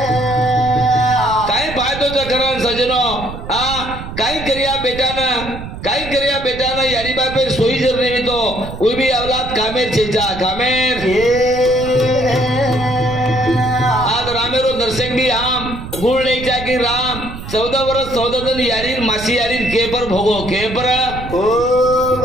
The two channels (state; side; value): noise; right; rumble, 10 dB below the sound